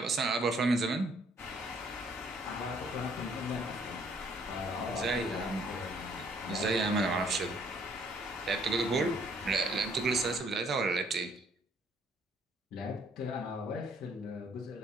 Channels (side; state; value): both; normal; correlation 0.63